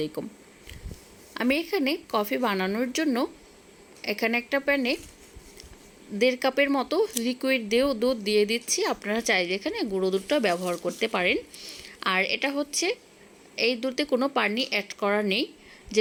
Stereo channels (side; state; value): both; identical; correlation 1.00